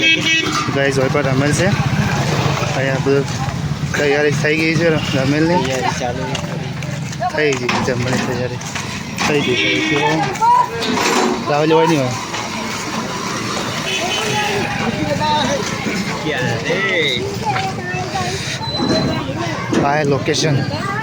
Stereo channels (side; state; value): both; identical; correlation 1.00